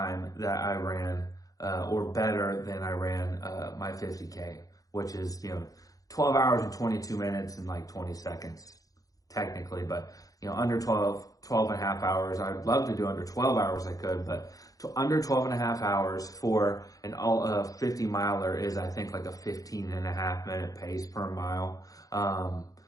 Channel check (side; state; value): right; late; 0.17 ms